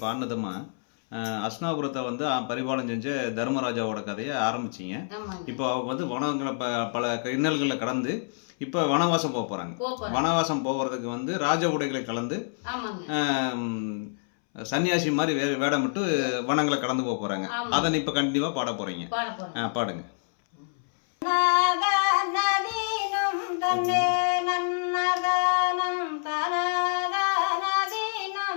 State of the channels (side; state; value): right; silent; 60 dB below the other